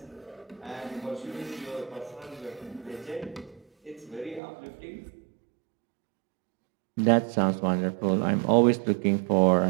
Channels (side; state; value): left; drops out; at 4.4 s